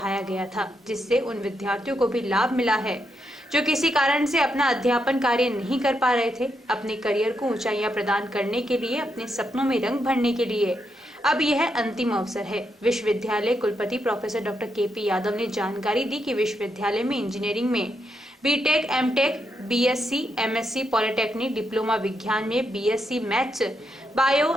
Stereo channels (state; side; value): normal; both; correlation 0.81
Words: गया था, जिससे उन विद्यार्थियों को भी लाभ मिला है जो किसी कारण से अपना अध्यापन कार्य नहीं कर पा रहे थे। अपने करियर को ऊंचाइयां प्रदान करने के लिए, अपने सपनों में रंग भरने के लिए अब यह अंतिम अवसर है। विश्वविद्यालय कुलपति प्रोफेसर डॉक्टर KP यादव ने जानकारी दी कि विश्वविद्यालय में इंजीनियरिंग में B Tech, M Tech, BSc, MSc polytechnic, diploma विज्ञान में BSc maths,